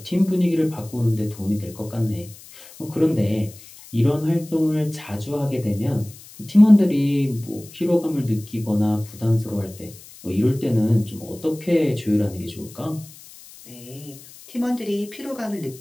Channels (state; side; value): noise; left; hiss, 20 dB below the sound